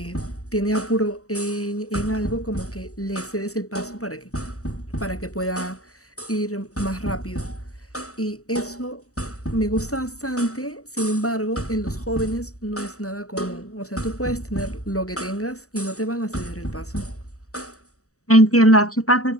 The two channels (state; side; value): late; right; 0.65 ms